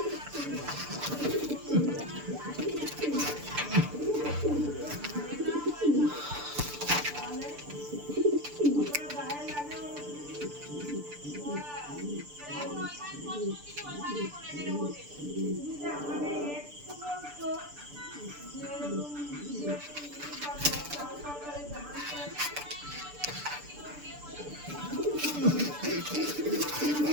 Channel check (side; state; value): left; late; 6.8 ms